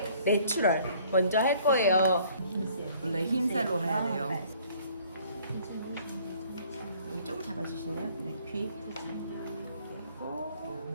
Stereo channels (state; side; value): inverted; both; correlation -0.58